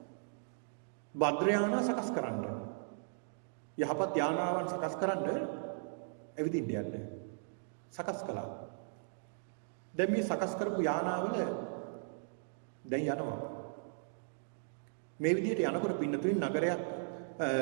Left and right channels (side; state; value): left; silent; digital silence